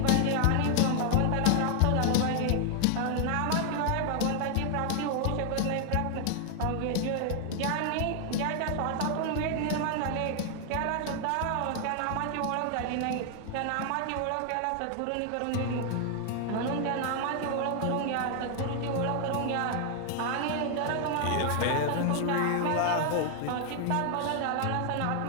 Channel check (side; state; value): both; different; correlation 0.00